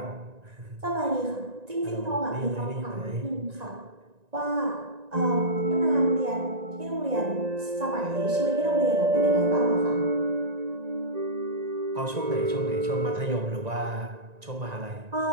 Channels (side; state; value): left; late; 1.9 ms